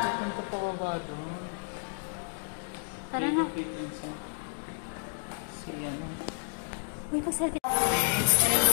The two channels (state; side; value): silent; right; digital silence